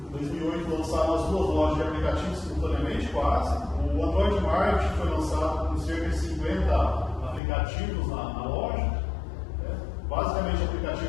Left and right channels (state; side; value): drops out; right; at 7.4 s